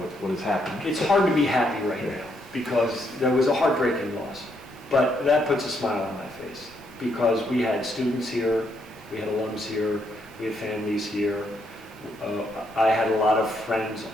has happened? It's hard to be happy right now because there was a heartbreaking loss. But that puts a smile on my face because we had students here, we had alums here, we had families here. I had a lot of friends,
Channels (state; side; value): normal; both; correlation 0.75